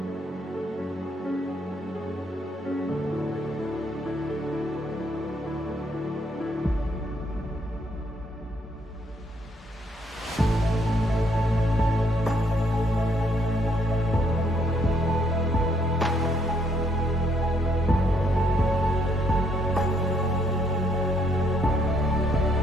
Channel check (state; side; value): normal; both; correlation 0.70